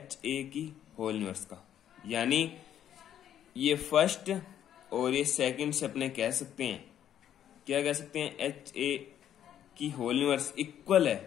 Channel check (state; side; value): quieter; right; 10.4 dB